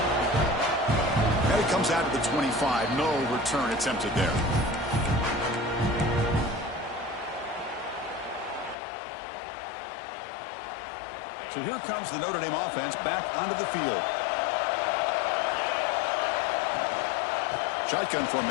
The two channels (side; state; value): right; drops out; at 8.8 s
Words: Now he comes out to the 25. No return attempted there. So here comes the Notre Dame offense back onto the field. Shotgun